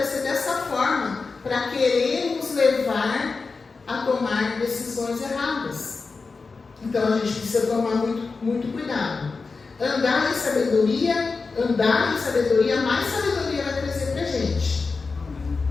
dessa forma para querer nos levar a tomar decisões erradas. Então a gente precisa tomar muito cuidado. Andar em sabedoria, mais sabedoria vai trazer para a gente.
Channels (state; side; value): quieter; right; 4.4 dB